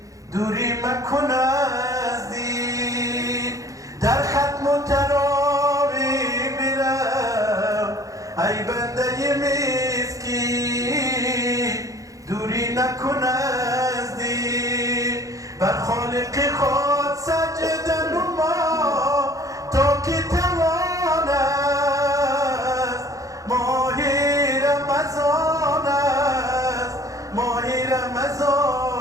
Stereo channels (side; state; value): left; late; 0.16 ms